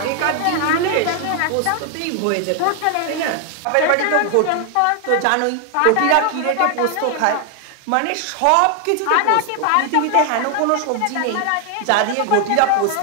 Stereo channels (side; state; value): both; different; correlation 0.00